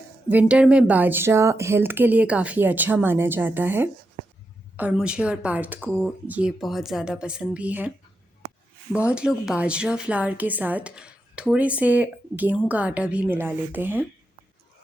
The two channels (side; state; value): both; normal; correlation 0.86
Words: विंटर में बाजरा हेल्थ के लिए काफ़ी अच्छा माना जाता है और मुझे और पार्थ को ये बहुत ज़्यादा पसंद भी है। बहुत लोग बाजरा फ्लावर के साथ थोड़े से गेहूं का आटा भी मिला लेते हैं।